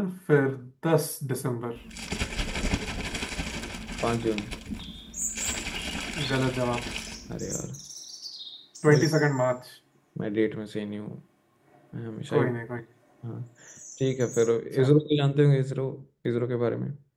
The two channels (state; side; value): identical; both; correlation 1.00